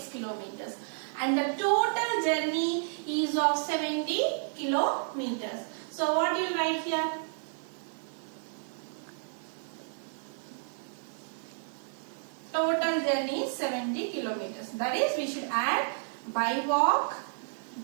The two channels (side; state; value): left; silent; 57 dB below the other